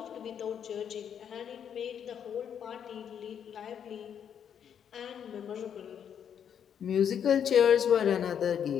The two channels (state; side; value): quieter; right; 8.4 dB